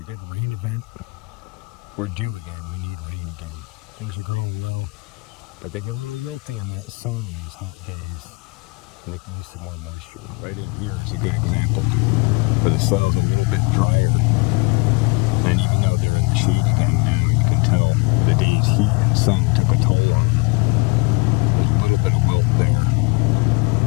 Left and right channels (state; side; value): quieter; right; 28.8 dB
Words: good rain event. We're due again. We need rain again. Things are growing well, but they get a little wilty in that sun on these hot days, and they can use some more moisture. Right in here is a good example where the soil's a little bit drier, and even though they're in the shade again now, you can tell the day's heat and sun took a toll on them. There's a little bit of wilt there.